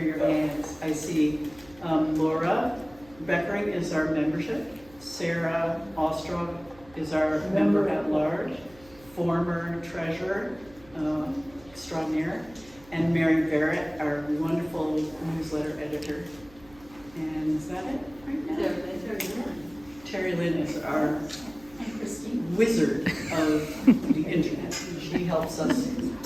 hands. I see Laura Beckering is our membership. Sarah Ostrov is our member at large, former treasurer extraordinaire, and Mary Barrett, our wonderful newsletter editor. And is that it right now? Terry Lynn is our wizard of the internet. She helps us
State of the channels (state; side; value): noise; right; hum, 24 dB below the sound